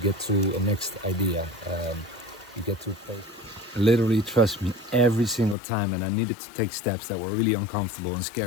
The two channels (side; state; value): right; drops out; at 5.6 s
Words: get to a next idea, you get to a place. Literally, trust me, every single time, and I needed to take steps that were really uncomfortable and